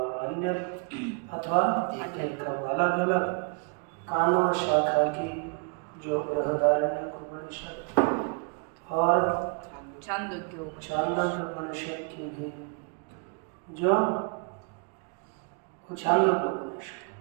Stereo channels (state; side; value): quieter; left; 37.9 dB